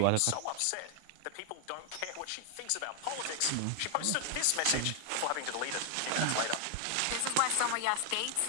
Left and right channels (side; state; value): both; different; correlation 0.00